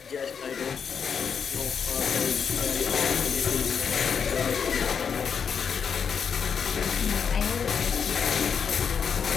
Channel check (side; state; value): right; quieter; 6.7 dB